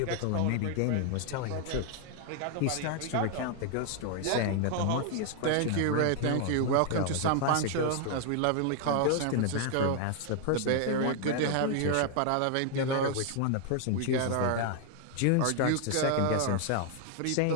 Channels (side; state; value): both; different; correlation 0.00